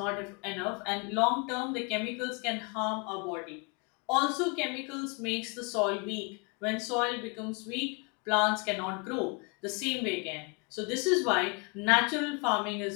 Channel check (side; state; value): right; quieter; 32.7 dB